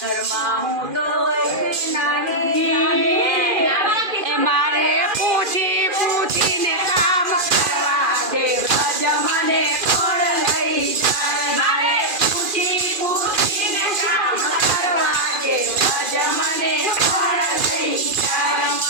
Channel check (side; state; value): left; late; 2.4 ms